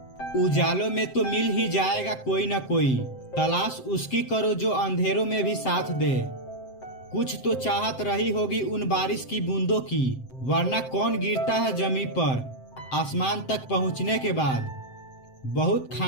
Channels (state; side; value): late; right; 7.7 ms